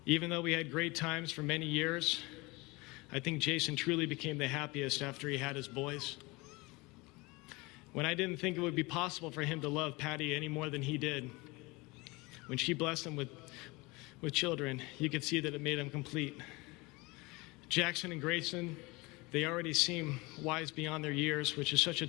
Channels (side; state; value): right; quieter; 24.2 dB